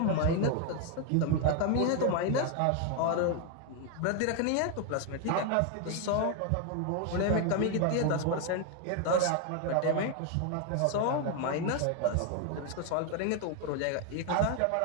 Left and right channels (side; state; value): both; different; correlation 0.01